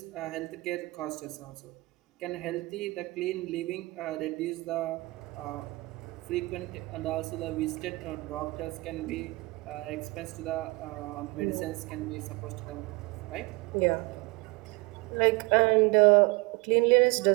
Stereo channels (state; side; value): quieter; left; 23.9 dB